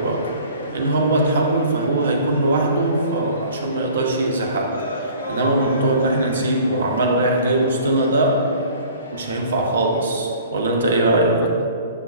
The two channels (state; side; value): inverted; both; correlation -0.49